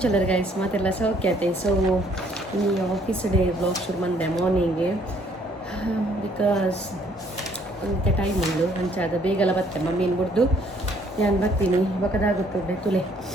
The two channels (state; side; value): normal; both; correlation 0.64